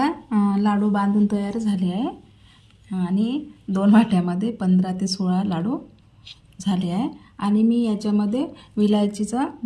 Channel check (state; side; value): identical; both; correlation 1.00